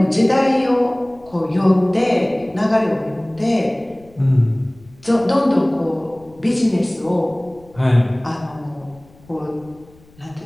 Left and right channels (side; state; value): left; noise; rumble, 27 dB below the sound